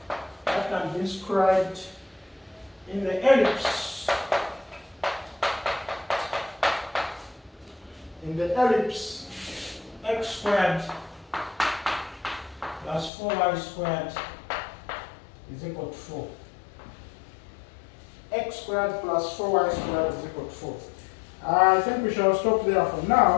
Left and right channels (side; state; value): right; drops out; at 13.1 s